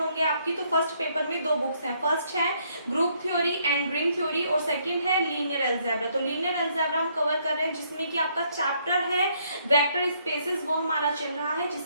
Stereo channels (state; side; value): inverted; both; correlation -0.69